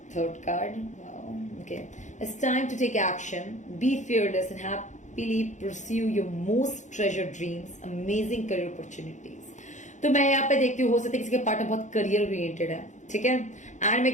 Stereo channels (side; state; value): right; late; 0.35 ms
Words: third card, okay, it's time to take action, be fearless and happily pursue your most treasured dreams, amazing career opportunities. तो मैं यहाँ पे देखती हूँ हो सकता है किसी के पार्टनर बहुत करियर ओरिएंटेड है, ठीक है। एंड